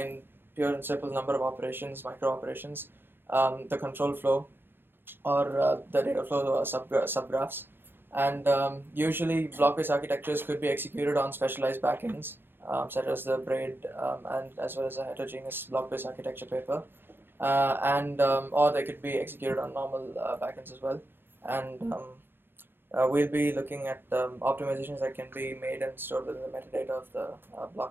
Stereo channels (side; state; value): left; late; 0.10 ms